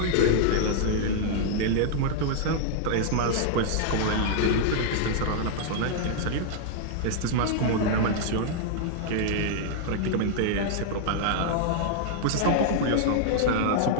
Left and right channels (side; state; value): both; different; correlation -0.01